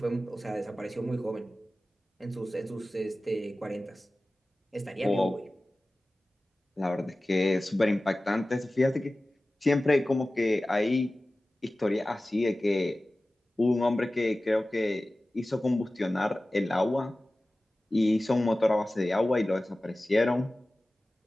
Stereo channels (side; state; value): both; normal; correlation 0.96